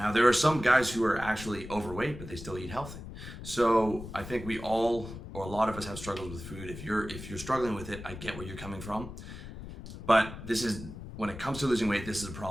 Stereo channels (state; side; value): noise; left; rumble, 11 dB below the sound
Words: there are some guys who are actually overweight, but they still eat healthy. So I think we all, or a lot of us, have struggled with food. If you're struggling with it, I get where you're coming from. But when it comes to losing weight, this is a